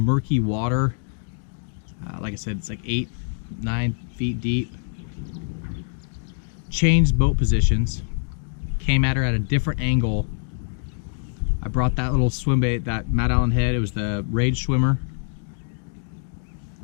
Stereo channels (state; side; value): silent; right; digital silence